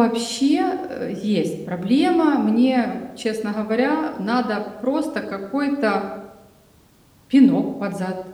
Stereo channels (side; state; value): both; identical; correlation 1.00